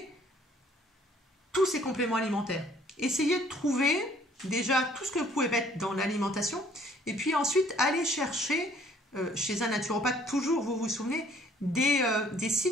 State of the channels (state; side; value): normal; both; correlation 0.59